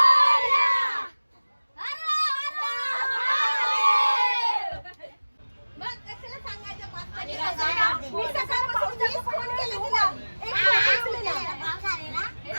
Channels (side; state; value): both; inverted; correlation -1.00